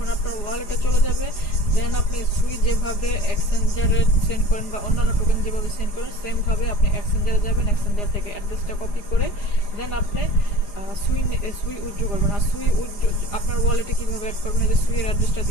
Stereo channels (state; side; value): late; right; 4.9 ms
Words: আপনার ওয়ালেটে চলে যাবে, দেন আপনি সুই যেভাবে এক্সচেঞ্জারে সেন্ড করেন বা অন্যান্য টোকেন যেভাবে সেন্ড করেন, সেমভাবে আপনি এক্সচেঞ্জারে যাবেন। এক্সচেঞ্জার থেকে অ্যাড্রেসটা কপি করে দেন আপনি সুই উইথড্র করবেন। আর সুই উইথড্র আপনার ওয়ালেটে কীভাবে অ্যাড করবেন, এই যে সুইয়ের অ্যাড্রেসটা